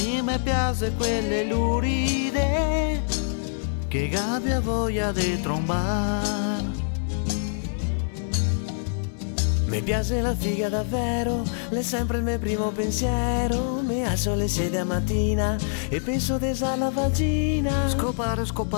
piace quelle luride che abbia voglia di trombar. Mi piace la figa davvero, è sempre il mio primo pensiero. Mi alzo alle 6 della mattina e penso di alla vagina. Scopare,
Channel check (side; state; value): right; silent; digital silence